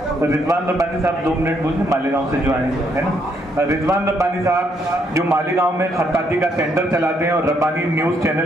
रिजवान रब्बानी साहब 2 मिनट बोलिए, मालेगांव से जो आए है ना, रिजवान रब्बानी साहब जो मालेगांव में खत्ताती का सेंटर चलाते हैं और रब्बानी न्यूज़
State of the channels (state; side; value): normal; both; correlation 0.73